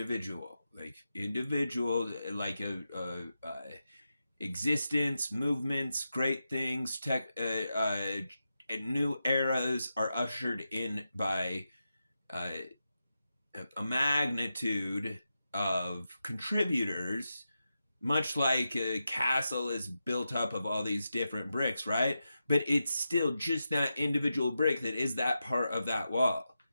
like existence, movements, great things, tech, and new eras are ushered in by uh, a magnitude of contributors, much like a castle is built up of all these different bricks, right? But it's still just that individual brick that is that part of that wall.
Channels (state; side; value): inverted; both; correlation -0.89